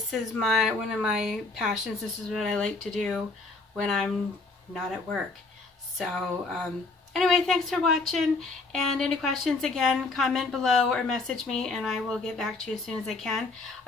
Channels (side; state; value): right; quieter; 3.6 dB